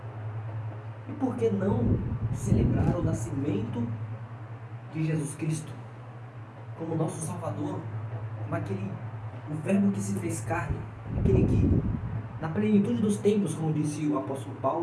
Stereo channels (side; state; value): both; identical; correlation 1.00